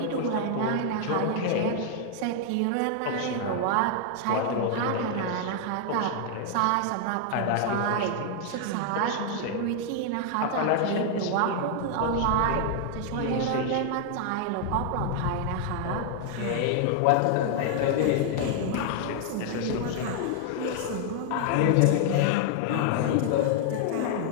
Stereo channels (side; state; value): both; different; correlation 0.00